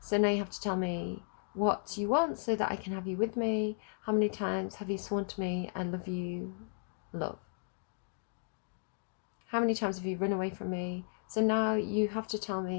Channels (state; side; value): silent; right; digital silence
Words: now you have to tell me what you want so that I can have you with me. How many times have you sworn to me I love you, love? How many times have you run away from me? So now you have to tell